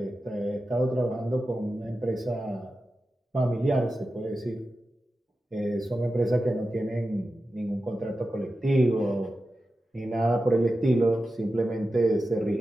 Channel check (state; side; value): normal; both; correlation 0.92